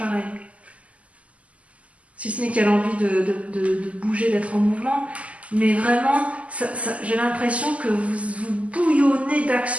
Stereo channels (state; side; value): late; left; 0.067 ms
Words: Si ce n'est qu'elle a envie de bouger, d'être en mouvement. Mais vraiment, j'ai l'impression que vous bouillonnez